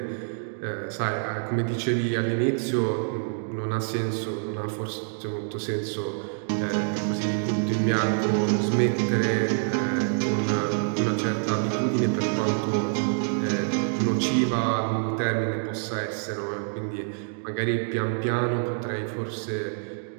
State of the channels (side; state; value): left; silent; digital silence